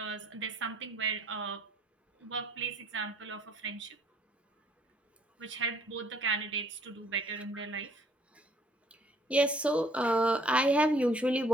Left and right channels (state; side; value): normal; both; correlation 0.60